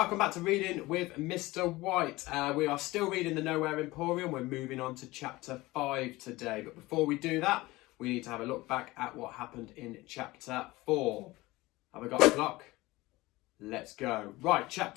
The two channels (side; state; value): right; quieter; 20.0 dB